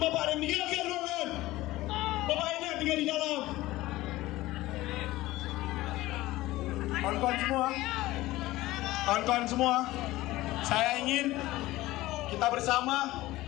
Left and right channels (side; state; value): right; quieter; 17.7 dB